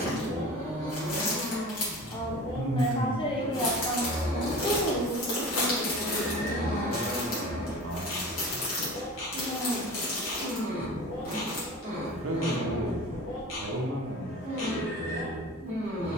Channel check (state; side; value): normal; both; correlation 0.37